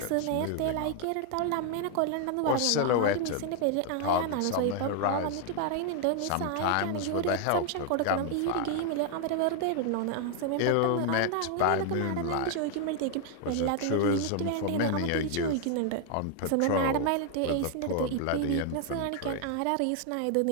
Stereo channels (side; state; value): both; different; correlation 0.00